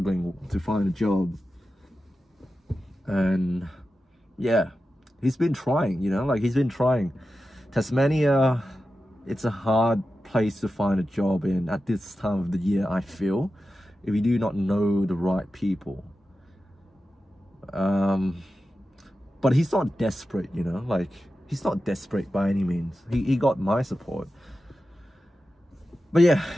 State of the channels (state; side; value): normal; both; correlation 0.92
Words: to find a job, and yeah, he's been trying, you know, like he's been trying. Tasmania, it's a hard place to find a job in at this time of the year, I feel, if you do not know the right people. But he's not desperate, you know, like he's not desperate by any means. He got my support. But yeah,